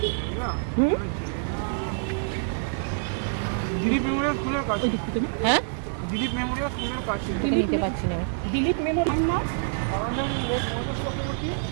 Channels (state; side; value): silent; left; 61 dB below the other